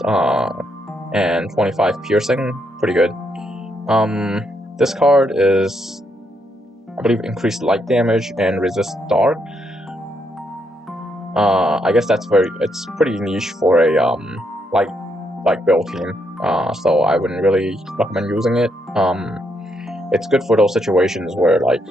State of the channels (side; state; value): both; normal; correlation 0.77